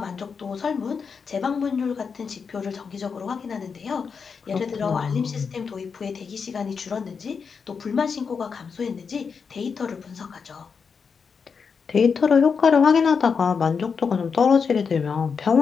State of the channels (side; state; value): right; quieter; 5.8 dB